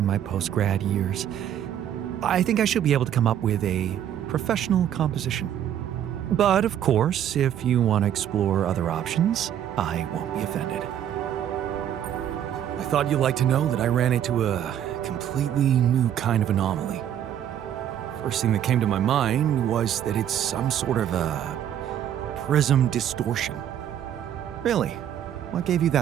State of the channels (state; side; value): quieter; left; 10.3 dB